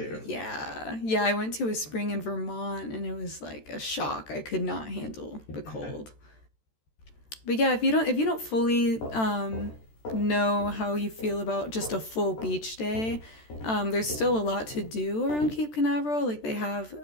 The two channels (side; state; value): right; late; 13 ms